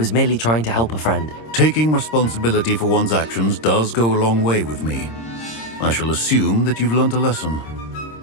merely trying to help a friend. Taking responsibility for one's actions does go a long way with me. I shall assume that you've learnt a lesson.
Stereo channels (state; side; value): late; right; 26 ms